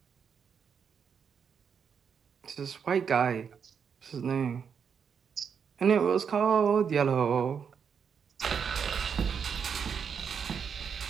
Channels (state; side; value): quieter; left; 6.9 dB